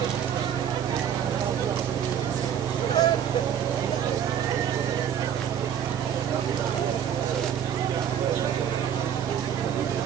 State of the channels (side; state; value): left; quieter; 9.1 dB